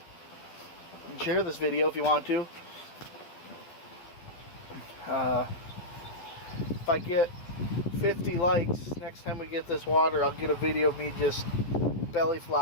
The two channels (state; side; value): late; right; 11 ms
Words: and share this video if you want to. If I get 50 likes next time we get this water, I'll get a video of me just belly